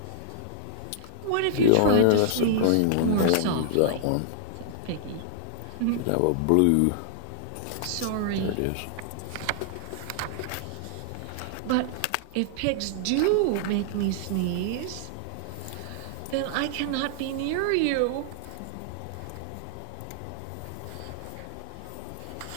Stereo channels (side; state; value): both; different; correlation -0.01